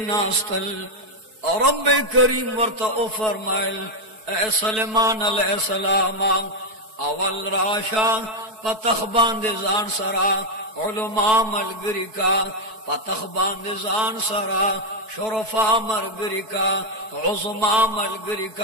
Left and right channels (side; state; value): left; late; 4.6 ms